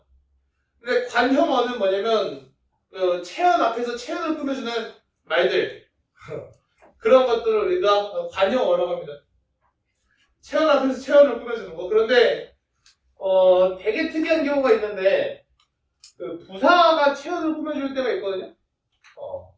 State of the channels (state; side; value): identical; both; correlation 1.00